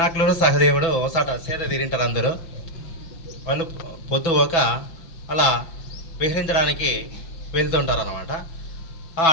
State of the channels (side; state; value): right; late; 6.0 ms